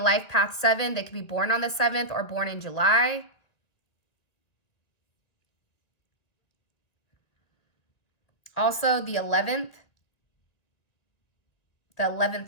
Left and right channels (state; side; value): late; right; 2.0 ms